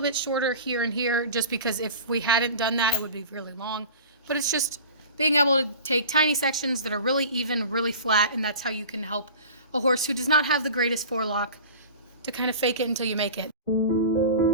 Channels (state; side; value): inverted; both; correlation -0.38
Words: shorter here and here, just because if we hadn't done that, it would be really long. But it's just being able to take tiny sections that are really even, really flat, and that's how you can help a horse who does not have the greatest forelock to kind of fake it until you make it.